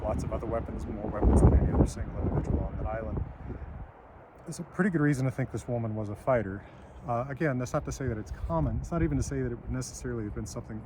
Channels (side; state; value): both; identical; correlation 1.00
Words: lots of other weapons, more weapons than any other single individual on that island. There's a pretty good reason to think this woman was a fighter. Again, that's not to say that it's common. It's not even to say that it would necessarily have been something